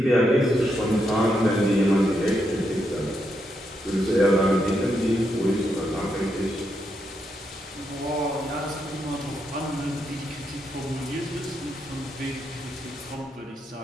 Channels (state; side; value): normal; both; correlation 0.81